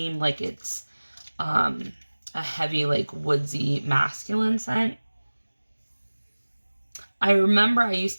like it's a heavy, like woodsy, masculine scent. I remember I used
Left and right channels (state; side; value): inverted; both; correlation -1.00